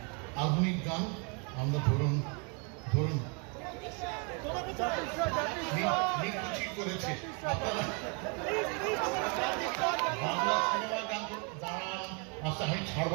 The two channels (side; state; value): left; quieter; 33.7 dB